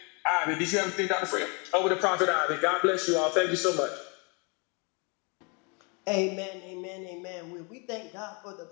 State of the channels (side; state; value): right; quieter; 33.1 dB